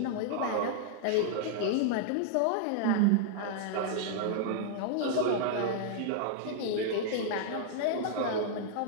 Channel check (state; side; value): different; both; correlation -0.01